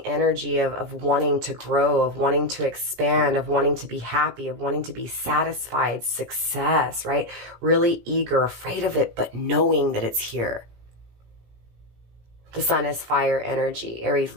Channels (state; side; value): late; left; 17 ms